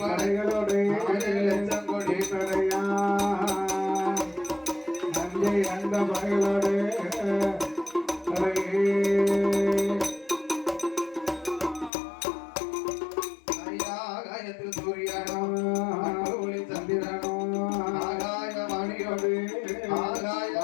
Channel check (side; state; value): right; drops out; at 11.9 s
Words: கொடி படையா நஞ்சை அந்த படைகளோடு ஆகாயத்தில் சூரியனோ ஒளி சந்திரனோ ஆகாய வாணியோடு ஆகாய